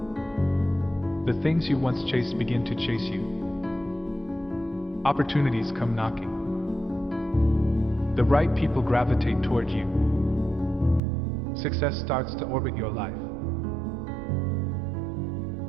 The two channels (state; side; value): drops out; left; at 11.0 s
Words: the things you once chased begin to chase you. Opportunities come knocking. The right people gravitate toward you. Success starts to orbit your life.